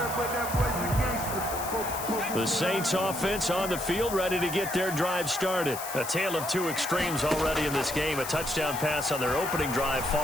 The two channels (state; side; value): noise; left; hiss, 9 dB below the sound